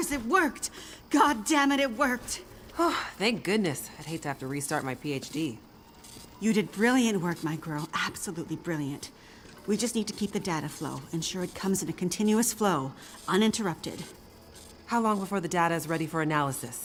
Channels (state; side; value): identical; both; correlation 1.00